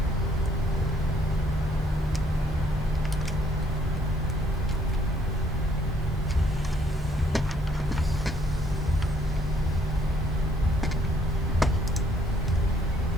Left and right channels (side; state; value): both; normal; correlation 0.66